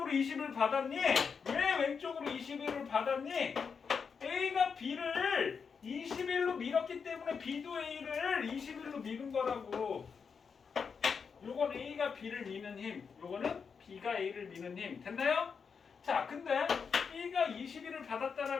21을 받았니? 왜 왼쪽으로 21을 받았니? A가 B를 21로 밀었기 때문에 B도 A를 21로 미는 거라고. 요건 A가 B를 미는 힘, 요거는 B가 A를 미는 힘. 됐나요? 자, 근데 B가 21을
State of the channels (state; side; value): quieter; right; 6.0 dB